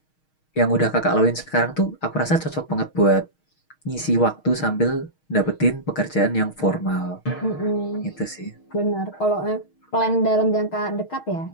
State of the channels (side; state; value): right; late; 6.4 ms